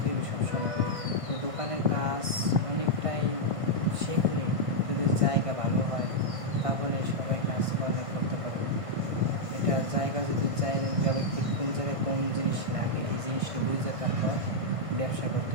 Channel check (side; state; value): left; late; 1.5 ms